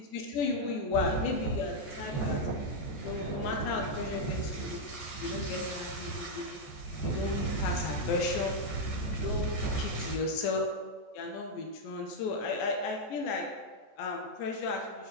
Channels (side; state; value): right; late; 14 ms